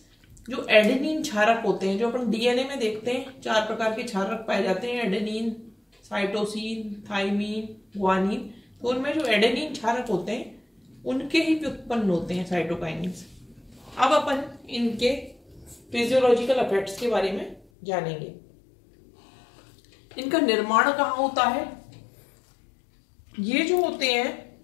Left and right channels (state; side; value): drops out; right; at 17.7 s